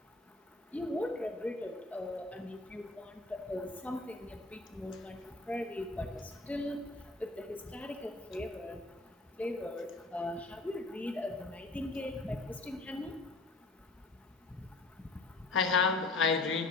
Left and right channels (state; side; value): quieter; right; 3.3 dB